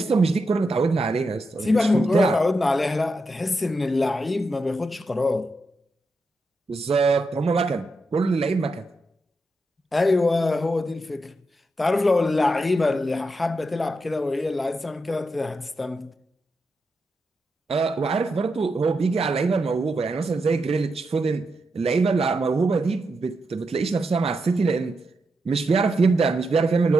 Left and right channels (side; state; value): both; normal; correlation 0.85